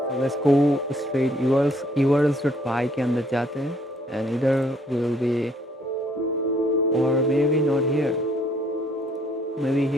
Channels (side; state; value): both; normal; correlation 0.64